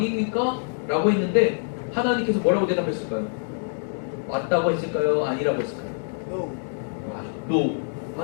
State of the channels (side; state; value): right; silent; digital silence